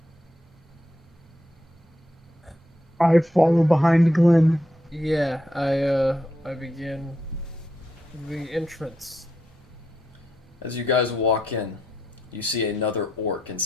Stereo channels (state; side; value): normal; both; correlation 0.81